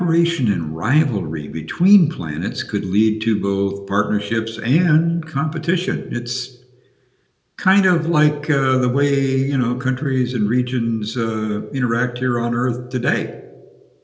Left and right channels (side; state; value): both; identical; correlation 1.00